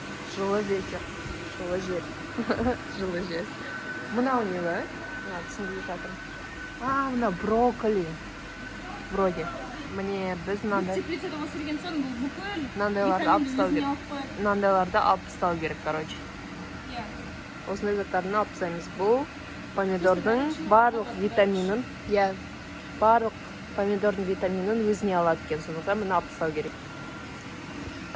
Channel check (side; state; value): both; identical; correlation 1.00